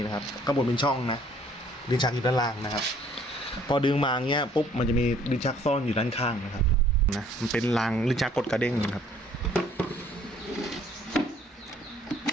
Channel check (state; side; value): normal; both; correlation 0.59